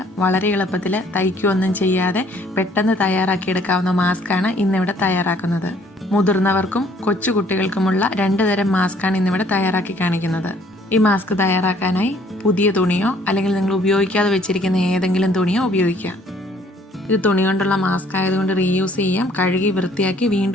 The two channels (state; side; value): normal; both; correlation 0.61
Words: വളരെ എളുപ്പത്തിൽ തയ്ക്കുകയൊന്നും ചെയ്യാതെ പെട്ടെന്ന് തയ്യാറാക്കിയെടുക്കാവുന്ന മാസ്കാണ് ഇന്നിവിടെ തയ്യാറാക്കുന്നത്. മുതിർന്നവർക്കും കൊച്ചുകുട്ടികൾക്കുമുള്ള 2 തരം മാസ്കാണ് ഇന്നിവിടെ തയ്യാറാക്കി കാണിക്കുന്നത്. ഈ മാസ്ക് തയ്യാറാക്കാനായി പുതിയ തുണിയോ അല്ലെങ്കിൽ നിങ്ങൾ ഉപയോഗിക്കാതെ വെച്ചിരിക്കുന്ന ഏതെങ്കിലും തുണിയോ ഉപയോഗിക്കാം. ഇത് തുണി കൊണ്ടുള്ള മാസ്ക് ആയതുകൊണ്ട് റീയൂസ് ചെയ്യാം, കഴുകി വൃത്തിയാക്കി